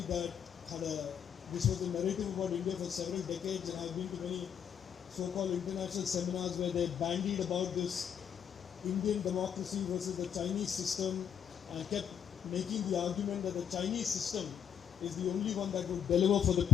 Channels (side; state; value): right; quieter; 8.4 dB